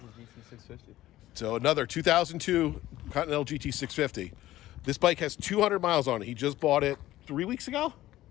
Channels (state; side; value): quieter; right; 15.2 dB